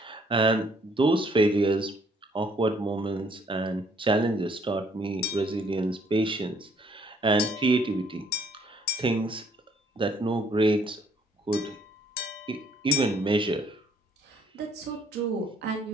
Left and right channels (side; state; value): both; normal; correlation 0.64